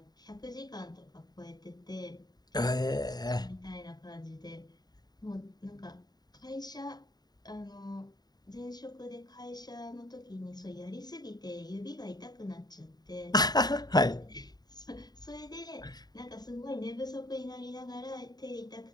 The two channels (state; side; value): late; right; 0.20 ms